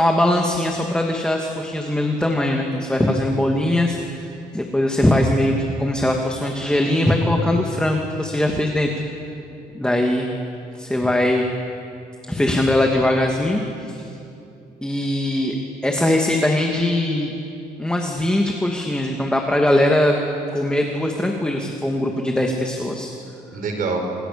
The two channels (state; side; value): normal; both; correlation 0.82